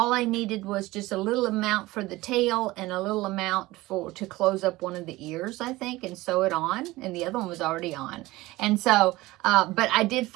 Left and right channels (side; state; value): left; quieter; 19.1 dB